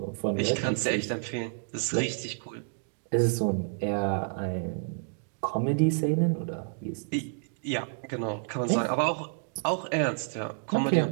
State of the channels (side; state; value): left; silent; digital silence